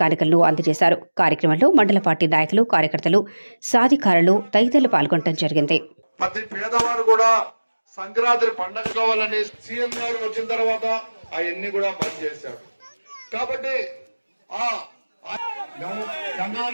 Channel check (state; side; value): inverted; both; correlation -1.00